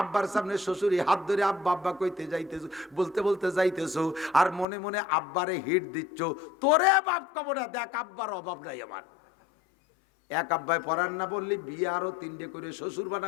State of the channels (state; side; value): drops out; right; at 4.7 s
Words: আব্বার সামনে শ্বশুরি হাত ধরে আব্বা আব্বা কইতে যাইতেছ, বলতে বলতে যাইতেছো, আর মনে মনে আব্বারে হিট দিচ্ছ, তোরে বাপ কব না, দেখ আব্বার অভাব নাই আমার। এক আব্বায় পড়ার না বললি বিয়ে আরো 3টে করে শ্বশুর